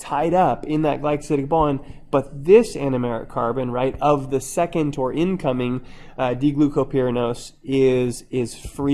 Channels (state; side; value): identical; both; correlation 1.00